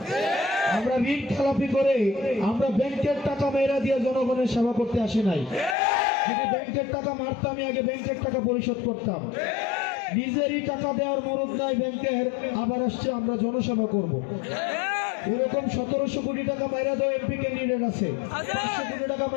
আমরা ঋণ খেলাপি করে আমরা ব্যাংকের টাকা মেয়েরা দিয়ে জনগণের সেবা করতে আসি নাই। যদি ব্যাংকের টাকা মারতাম, আগে ব্যাংকের টাকা পরিশোধ করতাম। নিজেরই টাকা দেওয়ার মরদ নাই ব্যাংকের, আবার আসছে আমরা জনসেবা করব। এরকম 1700 কোটি টাকা মাইরা দেওয়া এমপি ক্যান্ডিডেট আছে, 500 কোটি টাকা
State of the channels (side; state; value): right; drops out; at 5.8 s